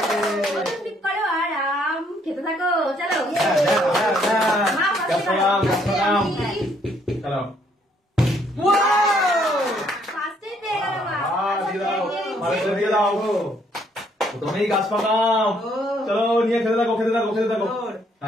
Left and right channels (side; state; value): both; normal; correlation 0.67